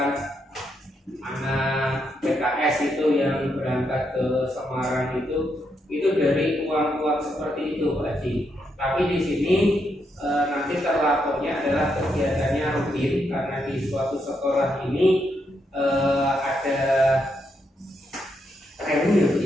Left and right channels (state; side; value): normal; both; correlation 0.80